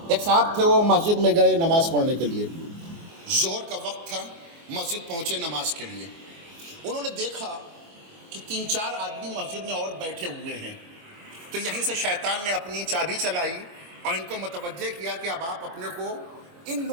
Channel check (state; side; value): late; left; 24 ms